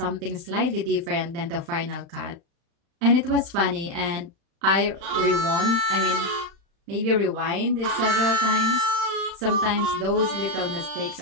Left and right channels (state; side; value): late; left; 35 ms